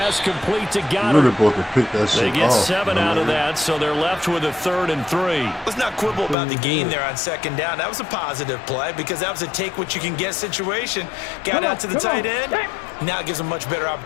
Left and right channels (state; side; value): drops out; right; at 6.4 s